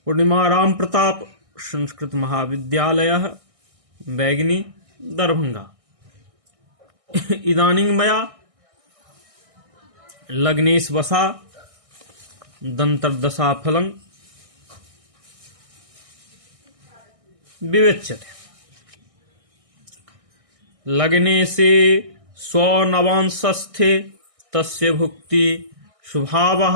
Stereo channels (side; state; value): left; late; 1.6 ms